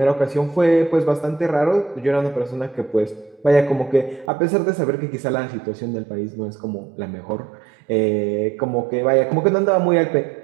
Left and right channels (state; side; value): drops out; left; at 4.3 s